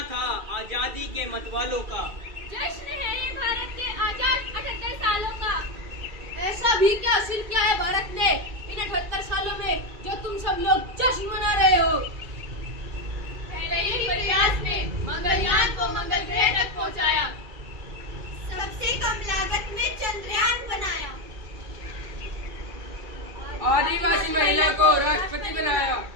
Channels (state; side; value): late; left; 2.4 ms